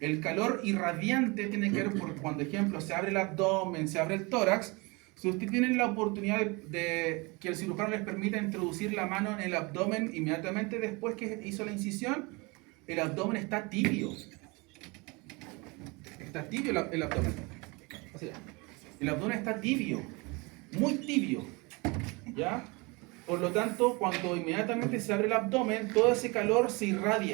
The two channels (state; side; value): quieter; left; 27.0 dB